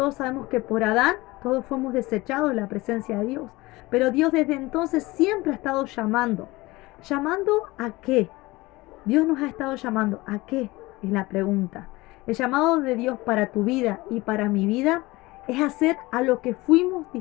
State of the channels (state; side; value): quieter; right; 21.0 dB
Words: sabemos que por Adán todos fuimos desechados de la presencia de Dios. Pero Dios desde entonces siempre ha estado llamando. ¿Llamando a qué? Dios nos ha estado llamando. ¿A qué? Es la pregunta. El llamado de Dios para tu vida y para mi vida es hacer a lo que fuimos